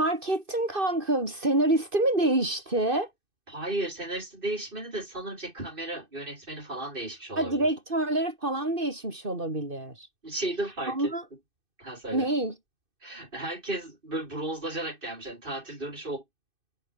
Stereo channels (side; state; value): left; late; 2.6 ms